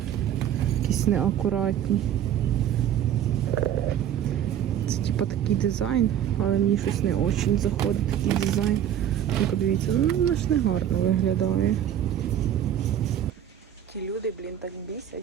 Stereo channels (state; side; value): quieter; left; 10.1 dB